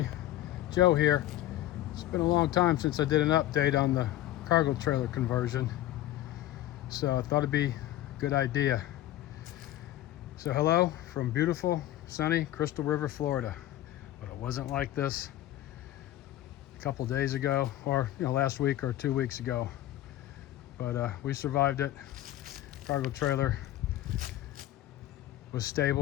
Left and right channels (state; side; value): quieter; right; 14.1 dB